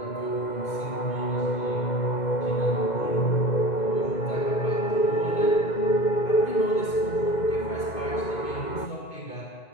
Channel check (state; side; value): late; right; 2.0 ms